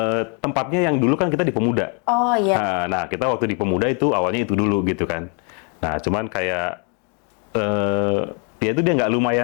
Tempatnya yang dulu kan kita di Pemuda. Oh iya. Nah, kita waktu di Pemuda itu awalnya itu dulu gitu kan. Nah, cuman kayak ya itu dia nggak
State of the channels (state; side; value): quieter; right; 37.7 dB